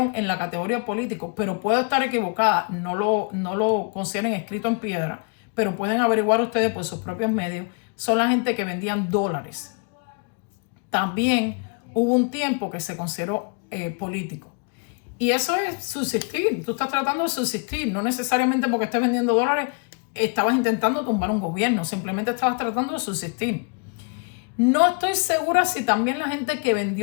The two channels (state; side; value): quieter; right; 37.7 dB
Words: en la categoría político, pero puedo estar equivocada, no lo consideren escrito en piedra, pero pueden averiguar ustedes por sus propios medios, son la gente que vendían dólares. También hubo un tiempo que se consideró político. Y eso es subsistir, tú estás tratando de subsistir, no necesariamente porque estés vendiendo dólares, estabas intentando tumbar un gobierno, simplemente estabas tratando de subsistir. No estoy segura si también la gente que